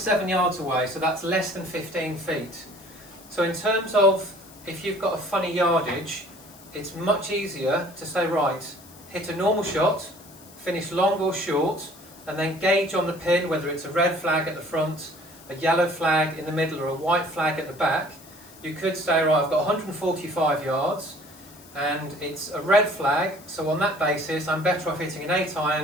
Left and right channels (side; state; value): left; noise; hiss, 22 dB below the sound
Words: yards away, so that's less than 15 feet. So in terms of if you've got a funny yardage, it's much easier to say, right, hit a normal shot, finish long or short, and then gauge on the pin whether it's a red flag at the front, a yellow flag in the middle, or a white flag at the back. You could say, right, I've got 145 yards, and it's a red flag, so on that basis I'm better off hitting an